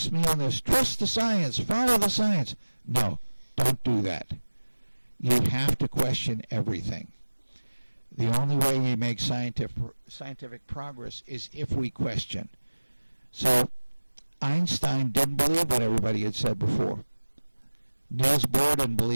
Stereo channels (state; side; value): inverted; both; correlation -1.00